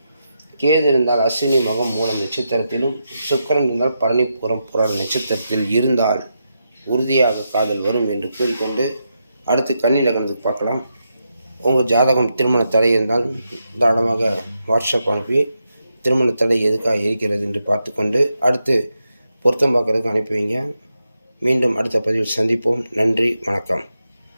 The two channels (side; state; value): both; inverted; correlation -0.85